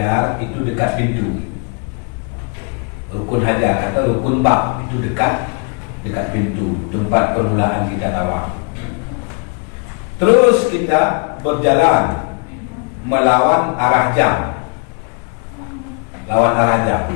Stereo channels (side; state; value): right; quieter; 38.5 dB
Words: itu dekat pintu. Rukun hajar atau rukun bab itu dekat pintu, tempat permulaan kita tawaf. Terus kita berjalan melawan arah jam. Lawan arah jam.